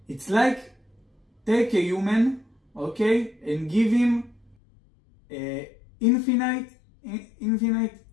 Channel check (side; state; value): right; drops out; at 4.5 s